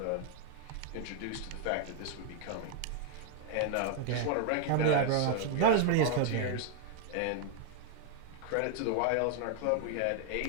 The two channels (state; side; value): different; both; correlation -0.01